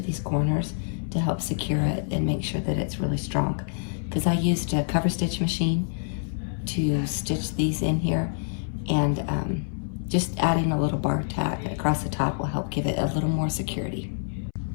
these corners to help secure it and make sure that it's really strong. Because I used a cover stitch machine to stitch these in here, and just adding a little bar tack across the top will help give it a little more security.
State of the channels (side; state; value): right; silent; 61 dB below the other